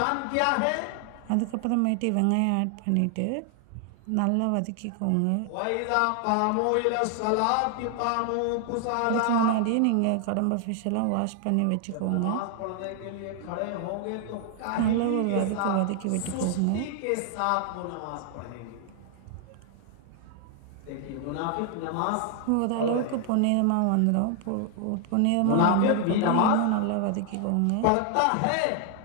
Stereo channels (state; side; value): different; both; correlation 0.00